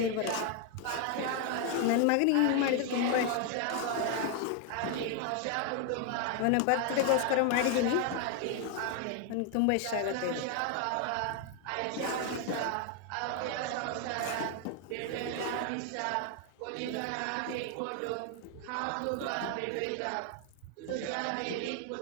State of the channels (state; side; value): different; both; correlation 0.00